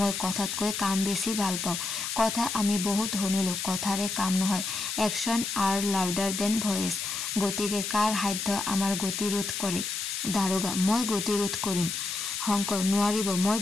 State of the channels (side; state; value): left; noise; hiss, 3 dB below the sound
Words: কথাতকৈ কাম বেছি ভাল পাওঁ। কথা আমি বহুত শুনিলোঁ, কথাৰে কাম নহয়। Action are louder than voice. গতিকে কাৰ সাধ্য আমাৰ গতি ৰোধ কৰে? দাৰোগা, মই গতি ৰোধ কৰিম। শংকৰ, নোৱাৰিব, মই